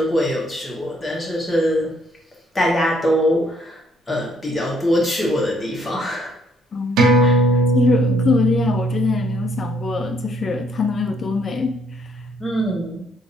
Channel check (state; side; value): normal; both; correlation 0.68